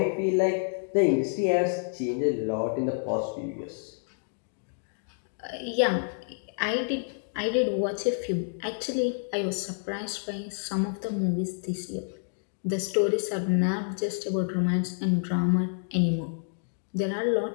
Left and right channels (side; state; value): right; silent; digital silence